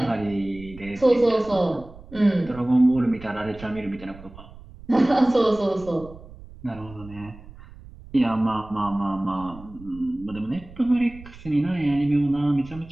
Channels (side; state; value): right; noise; rumble, 19 dB below the sound